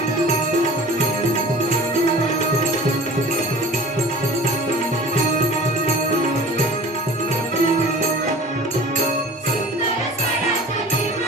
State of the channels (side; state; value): both; normal; correlation 0.42